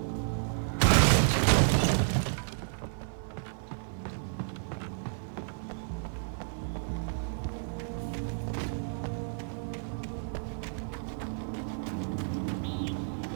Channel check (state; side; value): silent; left; digital silence